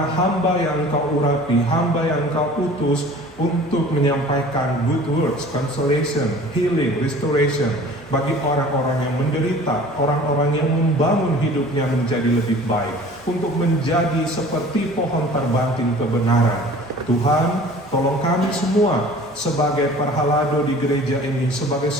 hamba yang Engkau urapi, hamba yang Engkau utus untuk menyampaikan good words, consolation, healing, restoration bagi orang-orang yang menderita, orang-orang yang membangun hidupnya menjadi lebih baik, untuk menjadi seperti pohon terbanting kebenaran. Tuhan, tolong kami semua sebagai perhalado di gereja ini, sebagai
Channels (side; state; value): both; normal; correlation 0.45